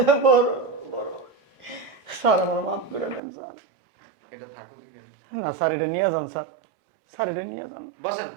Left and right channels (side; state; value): left; drops out; at 3.2 s